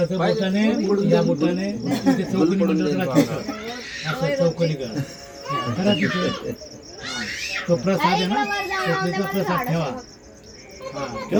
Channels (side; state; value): both; identical; correlation 1.00